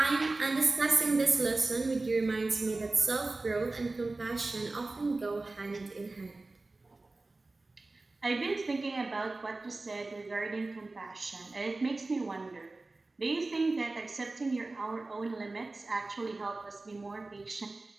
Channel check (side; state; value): left; quieter; 3.3 dB